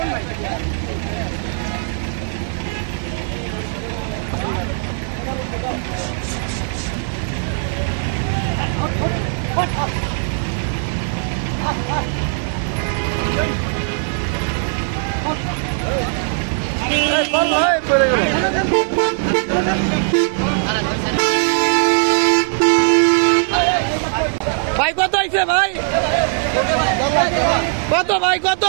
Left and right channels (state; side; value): silent; left; 63 dB below the other